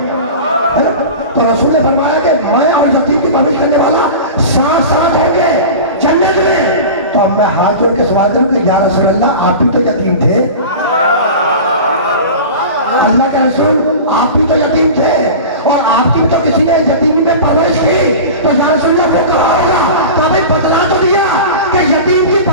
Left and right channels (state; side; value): inverted; both; correlation -0.32